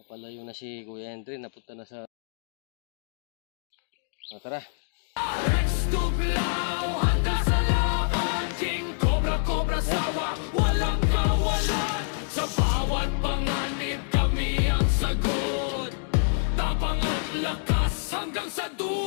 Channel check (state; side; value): silent; right; digital silence